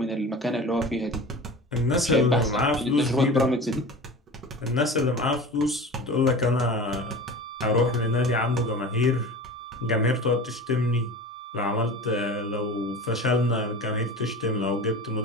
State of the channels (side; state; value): both; normal; correlation 0.34